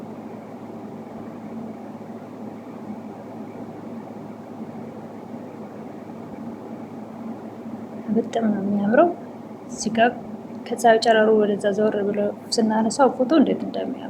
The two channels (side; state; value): both; identical; correlation 1.00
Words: በጣም ነው የሚያምረው። እዚህ ጋር ከፀሐዩ ጨረሩ ወደዛ ዘወር ብሎ ስናነሳው ፎቶ እንዴት